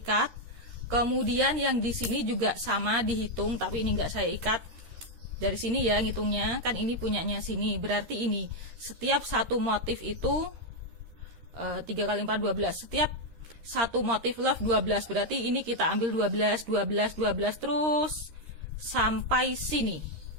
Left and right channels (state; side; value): late; left; 13 ms